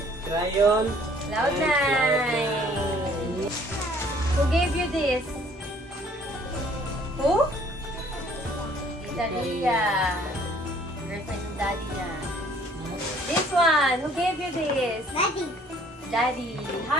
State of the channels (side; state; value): both; normal; correlation 0.58